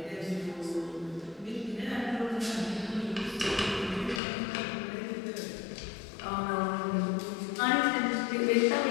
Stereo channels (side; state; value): right; drops out; at 4.2 s